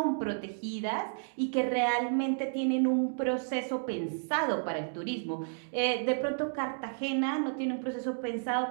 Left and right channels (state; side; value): silent; left; digital silence